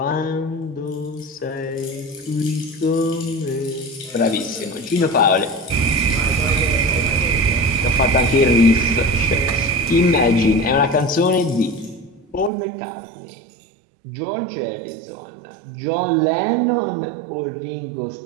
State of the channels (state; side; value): drops out; left; at 12.5 s